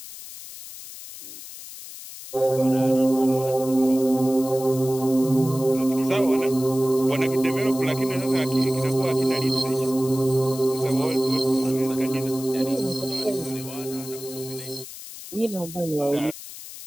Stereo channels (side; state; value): left; noise; hiss, 13 dB below the sound